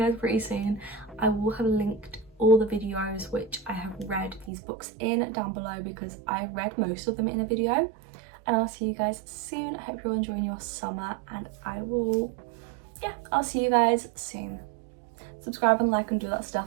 pretty soon. I will have linked all the videos which I have read these books in down below, because I read most of them in a video. And I'll see you guys soon. I hope you're all enjoying your summer, and I'll see you guys soon. Subscribe and like and do that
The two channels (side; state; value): left; drops out; at 4.5 s